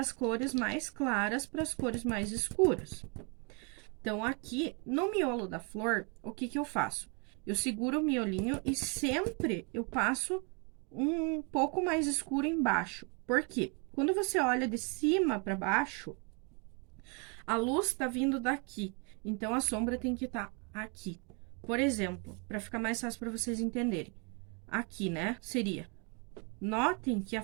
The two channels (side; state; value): left; quieter; 34.3 dB